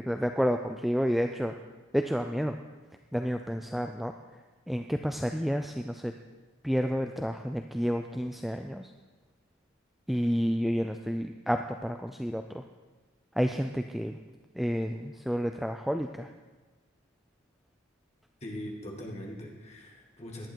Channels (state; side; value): normal; both; correlation 0.96